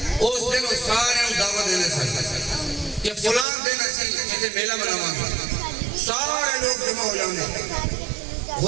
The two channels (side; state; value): left; drops out; at 3.5 s